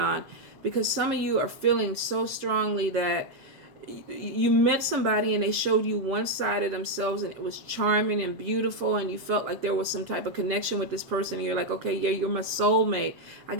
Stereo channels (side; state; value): left; late; 7.3 ms